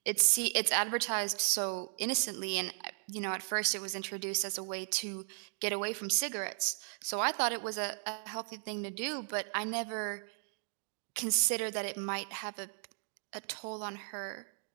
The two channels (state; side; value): silent; left; 54 dB below the other